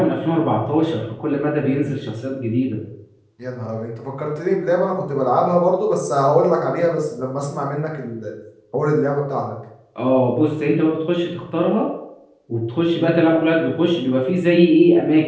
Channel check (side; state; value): both; identical; correlation 1.00